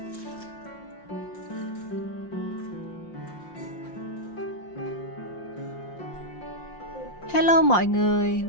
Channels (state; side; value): late; right; 5.7 ms